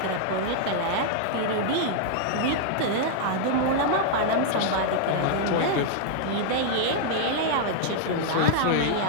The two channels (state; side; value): different; both; correlation -0.01